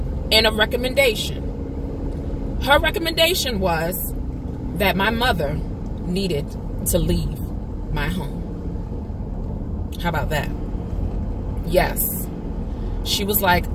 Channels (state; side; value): identical; both; correlation 1.00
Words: and a recommendation. Her recommendation was that my mother needed to leave my home. How about that? Yes. She was like,